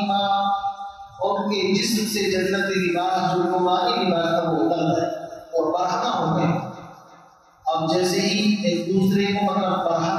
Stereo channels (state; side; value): identical; both; correlation 1.00